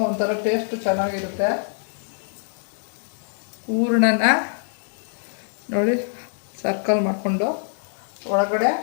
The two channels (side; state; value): right; silent; 62 dB below the other